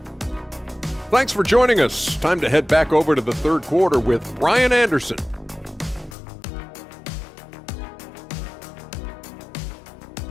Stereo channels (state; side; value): drops out; right; at 6.2 s